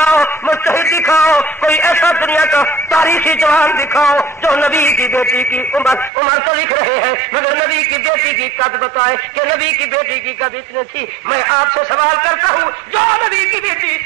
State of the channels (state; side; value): drops out; left; at 6.1 s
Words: مجتہد دکھاؤ کوئی ایسا دنیا کا تاریخی جوان دکھاؤ جو نبی کی بیٹی کی عمر تو لکھ رہے ہیں مگر نبی نبی کی بیٹی کی قد بتائے کہ نبی کی بیٹی کی قد اتنی تھی. میں آپ سے سوال کرتا ہوں, جو نبی کی بیٹی